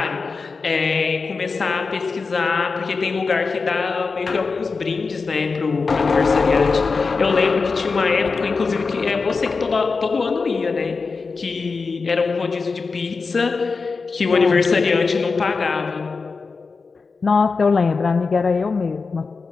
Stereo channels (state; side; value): quieter; right; 4.5 dB